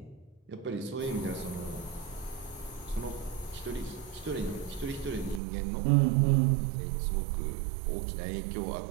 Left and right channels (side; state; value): left; drops out; at 5.4 s